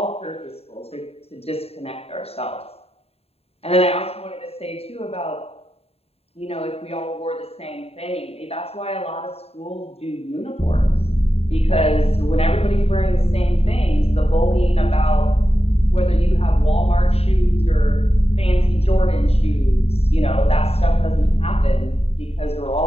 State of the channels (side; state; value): right; late; 0.29 ms